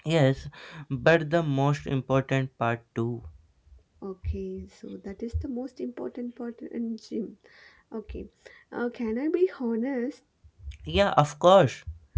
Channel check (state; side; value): identical; both; correlation 1.00